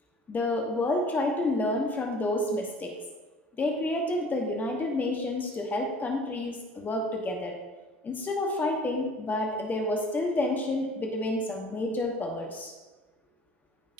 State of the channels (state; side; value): normal; both; correlation 0.50